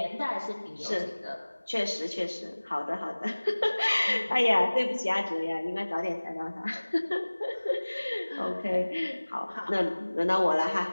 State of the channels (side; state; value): both; inverted; correlation -1.00